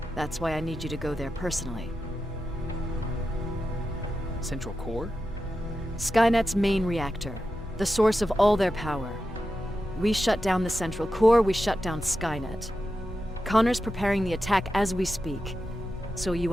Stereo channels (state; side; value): normal; both; correlation 0.90